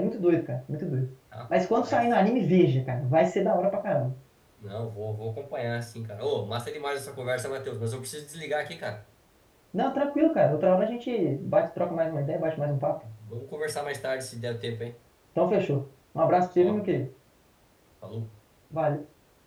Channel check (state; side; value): identical; both; correlation 1.00